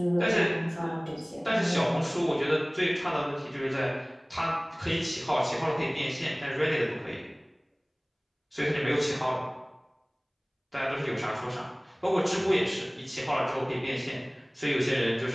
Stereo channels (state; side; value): identical; both; correlation 1.00